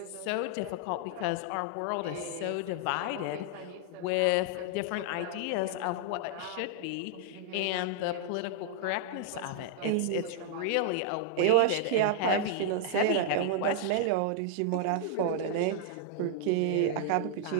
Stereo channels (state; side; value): different; both; correlation -0.01